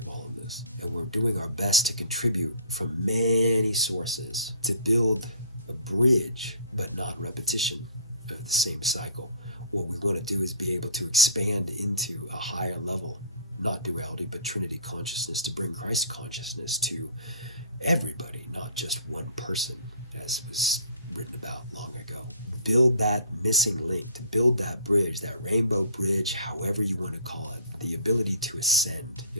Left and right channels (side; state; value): both; inverted; correlation -0.49